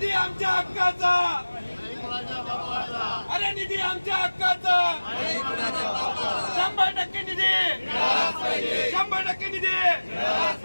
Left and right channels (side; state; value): both; inverted; correlation -1.00